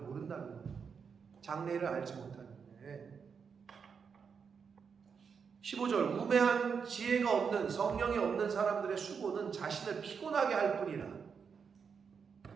거예요. 장래일을 알지 못하는데. 15절, 우매한 지혜가 없는, 성령이 없는 사람들의 수고는 자신을 피곤하게 할 뿐이라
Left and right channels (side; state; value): left; quieter; 6.2 dB